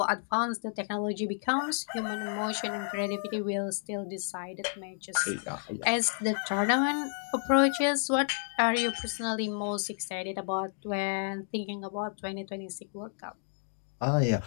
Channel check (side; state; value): right; silent; digital silence